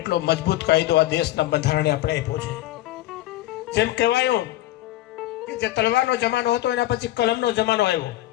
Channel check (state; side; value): quieter; right; 15.5 dB